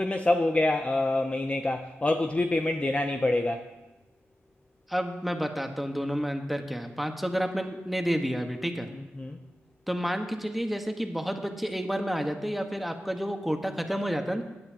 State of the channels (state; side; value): normal; both; correlation 0.94